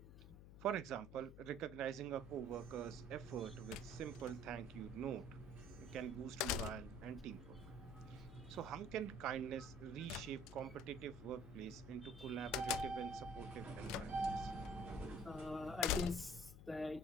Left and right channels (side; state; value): left; noise; hum, 14 dB below the sound